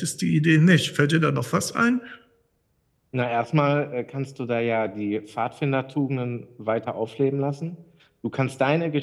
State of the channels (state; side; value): identical; both; correlation 1.00